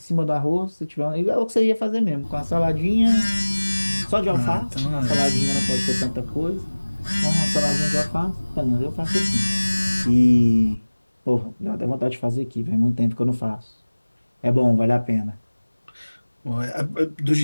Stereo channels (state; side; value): inverted; both; correlation -1.00